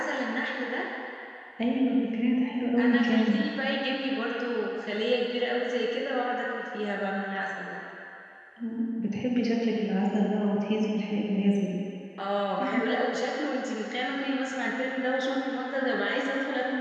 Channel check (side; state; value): both; identical; correlation 1.00